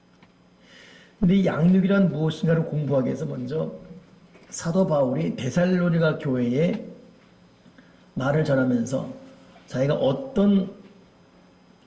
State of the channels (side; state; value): both; identical; correlation 1.00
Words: 근데 이 양육이란 무엇인가를 공부하기 위해서 먼저 사도 바울이 데살로니가 교회에 말을 전하면서 자기가 어떤